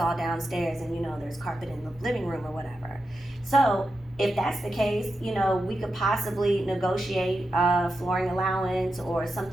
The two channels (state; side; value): normal; both; correlation 0.89